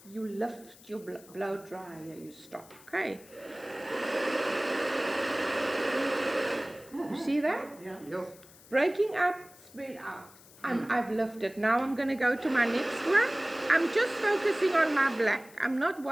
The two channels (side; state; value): left; noise; hiss, 23 dB below the sound